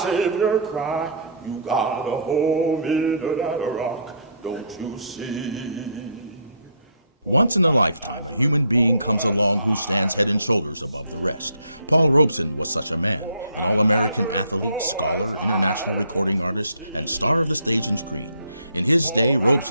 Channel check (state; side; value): inverted; both; correlation -0.61